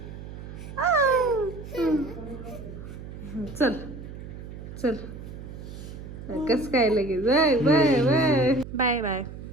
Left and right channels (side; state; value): right; noise; hum, 12 dB below the sound